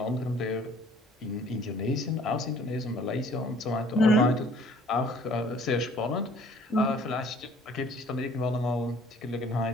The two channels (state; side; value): normal; both; correlation 0.55